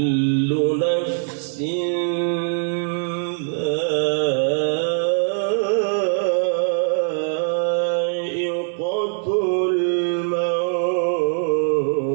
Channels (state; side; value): silent; left; 58 dB below the other